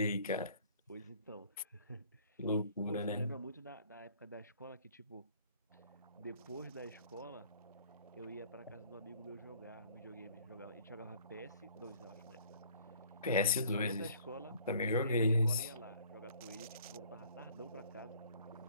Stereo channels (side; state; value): both; inverted; correlation -0.56